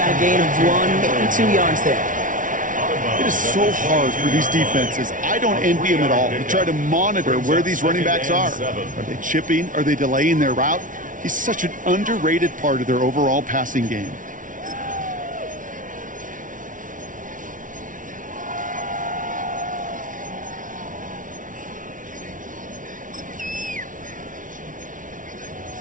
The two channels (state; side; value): late; left; 0.38 ms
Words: a gain of 1, maybe 2 yards there. It is so hard for these defenses. I don't envy them at all. To try to monitor where these running backs are. Are they chipping? Are they delaying their route? He's such an underrated part of their overall passing game.